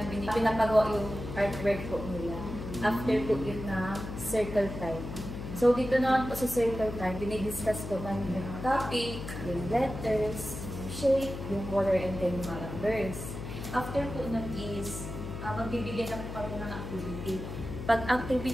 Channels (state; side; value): noise; left; hum, 8 dB below the sound